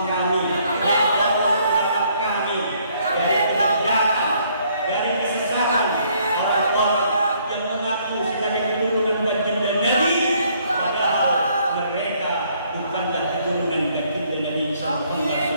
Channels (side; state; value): both; inverted; correlation -0.66